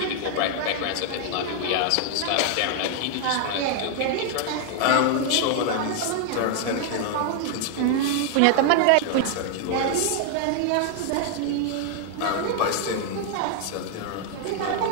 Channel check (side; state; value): both; different; correlation 0.00